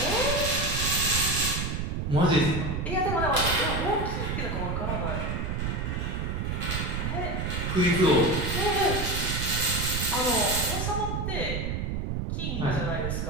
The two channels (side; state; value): right; noise; rumble, 2 dB below the sound